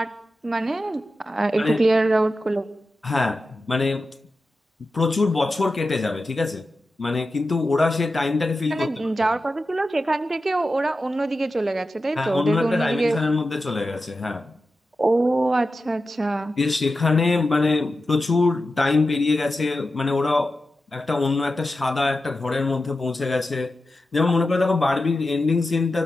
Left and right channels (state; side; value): normal; both; correlation 0.92